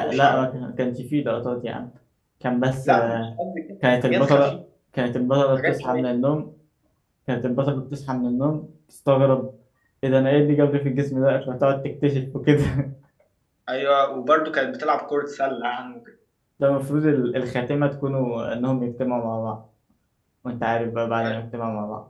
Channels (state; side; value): identical; both; correlation 1.00